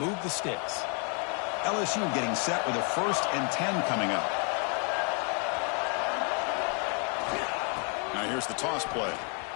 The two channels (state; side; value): quieter; right; 39.0 dB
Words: the sticks. LSU getting set with a 1st and 10 coming up. Now here's the toss play.